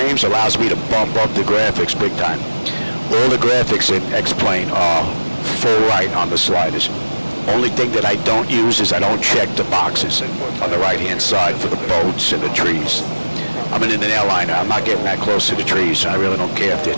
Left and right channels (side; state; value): both; inverted; correlation -1.00